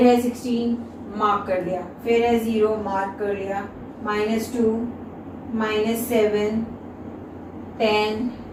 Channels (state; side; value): identical; both; correlation 1.00